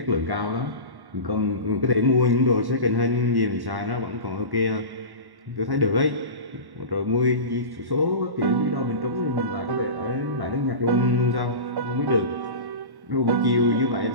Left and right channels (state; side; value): late; left; 1.1 ms